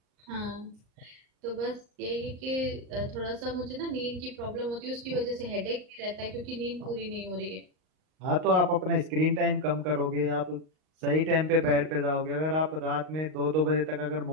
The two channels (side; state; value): left; late; 38 ms